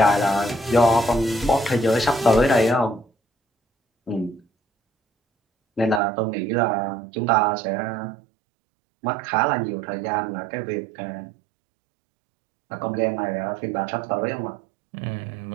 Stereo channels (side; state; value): left; drops out; at 6.0 s